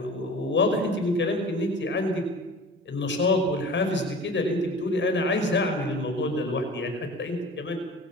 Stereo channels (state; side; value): normal; both; correlation 0.40